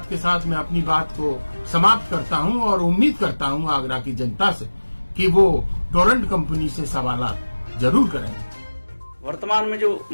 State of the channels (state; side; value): inverted; both; correlation -1.00